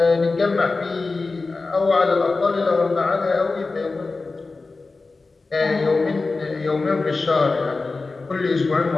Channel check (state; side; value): quieter; right; 3.8 dB